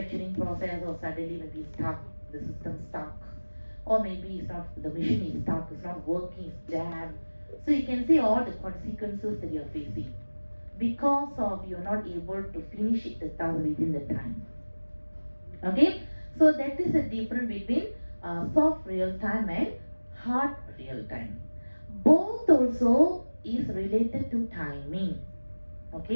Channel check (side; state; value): both; inverted; correlation -1.00